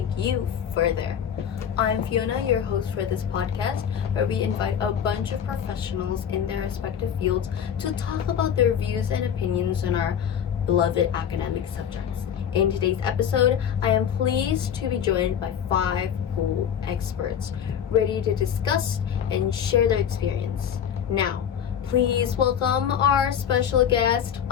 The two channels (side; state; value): right; quieter; 8.6 dB